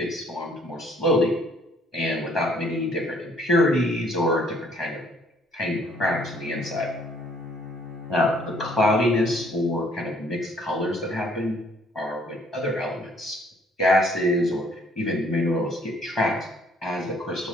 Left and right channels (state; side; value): normal; both; correlation 0.62